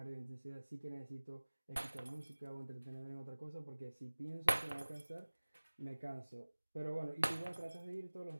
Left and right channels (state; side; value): inverted; both; correlation -1.00